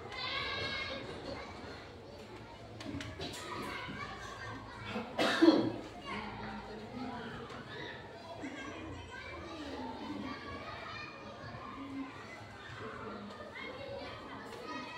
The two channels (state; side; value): identical; both; correlation 1.00